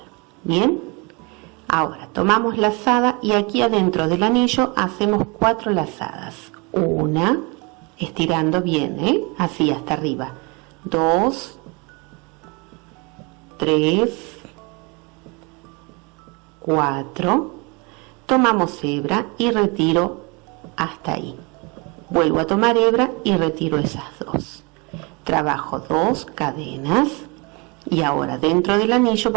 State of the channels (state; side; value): quieter; left; 29.3 dB